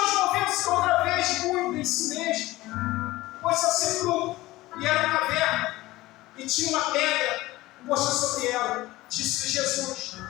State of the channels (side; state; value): right; quieter; 18.2 dB